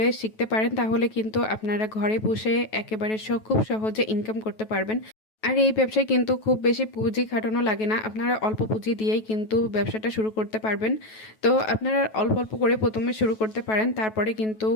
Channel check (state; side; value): late; right; 9.2 ms